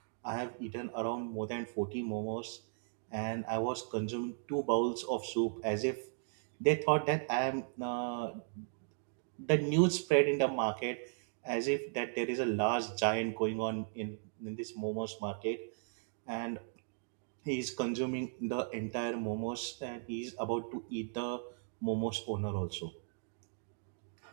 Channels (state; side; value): silent; left; digital silence